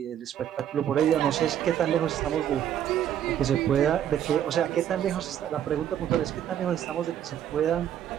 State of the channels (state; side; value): quieter; left; 10.3 dB